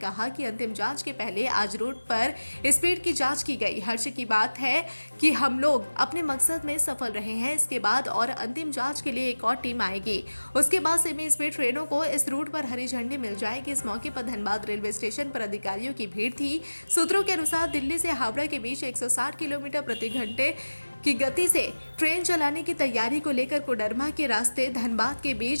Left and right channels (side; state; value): both; inverted; correlation -1.00